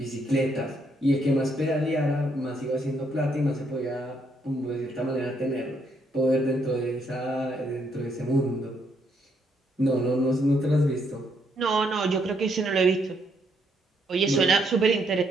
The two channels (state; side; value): normal; both; correlation 0.73